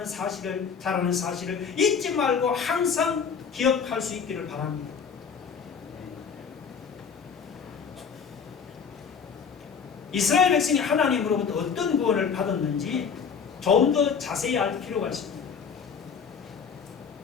사실을, 잘하는 사실을 잊지 말고 항상 기억할 수 있기를 바랍니다. 이스라엘 백성이 하나님으로부터 어떤 구원을 받았는지 좀 더 자세히 알 필요가 있습니다.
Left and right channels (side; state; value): right; quieter; 6.4 dB